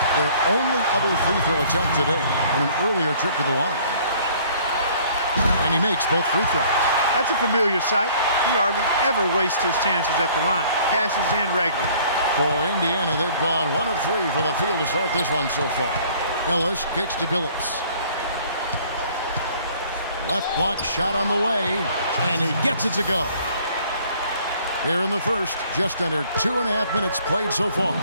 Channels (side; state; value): both; inverted; correlation -0.55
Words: their only other free throw attempt today on an earlier trip to the line. And he makes both free throws. That's a familiar sight. He hardly ever wastes his chances at the line. Cashes in regularly. For Indiana, they've gone 1 of 3 from the field to start this one so far. Ellis kicks to Billups. Left block shot on the way, and he gets it to go. Here in the first, just under 2.5 minutes played so far.